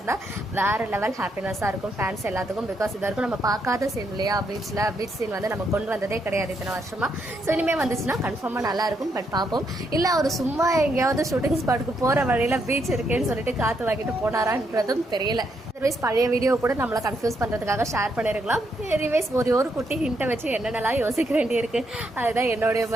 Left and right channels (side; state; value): both; normal; correlation 0.77